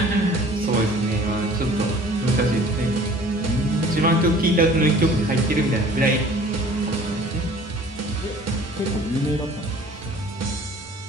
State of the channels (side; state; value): both; normal; correlation 0.49